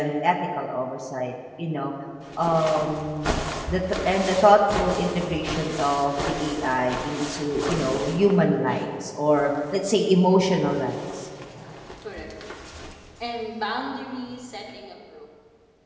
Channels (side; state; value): both; identical; correlation 1.00